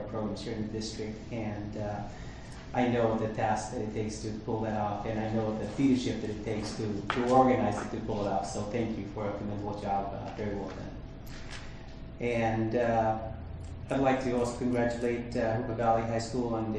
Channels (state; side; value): identical; both; correlation 1.00